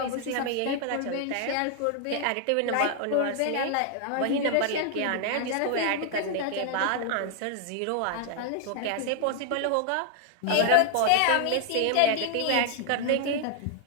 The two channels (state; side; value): different; both; correlation 0.00